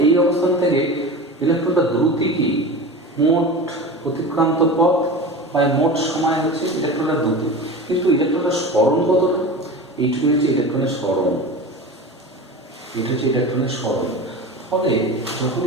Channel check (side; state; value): both; normal; correlation 0.31